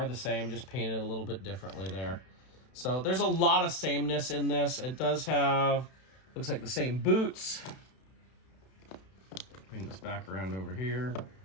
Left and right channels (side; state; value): right; late; 31 ms